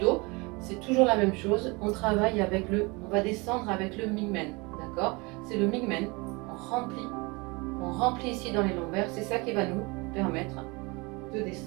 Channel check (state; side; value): quieter; left; 26.8 dB